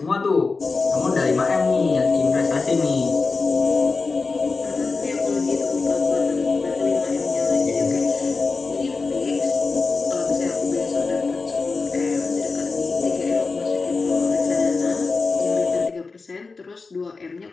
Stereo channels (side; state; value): right; quieter; 4.1 dB